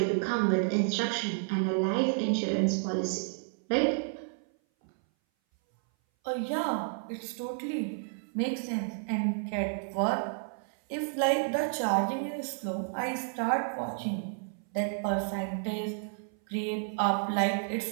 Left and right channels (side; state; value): left; silent; 57 dB below the other